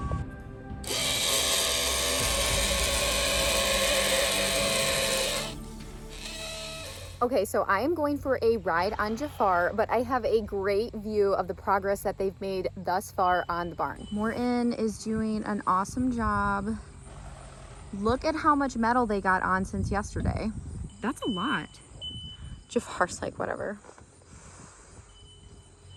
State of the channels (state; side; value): identical; both; correlation 1.00